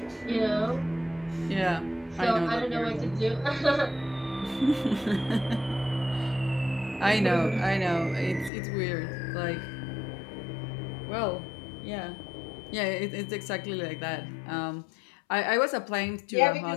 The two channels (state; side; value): drops out; right; at 8.5 s